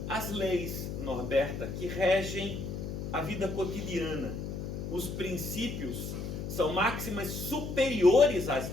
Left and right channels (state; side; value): noise; left; hum, 5 dB below the sound